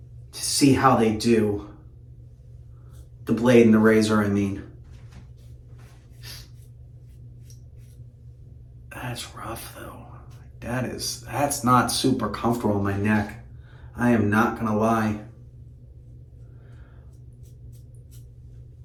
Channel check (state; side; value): identical; both; correlation 1.00